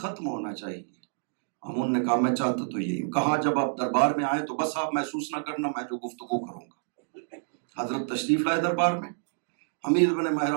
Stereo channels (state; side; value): silent; left; digital silence